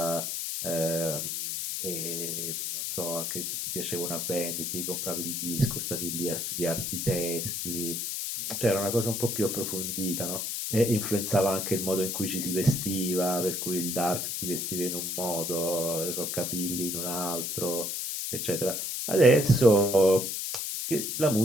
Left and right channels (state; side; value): noise; left; hiss, 3 dB below the sound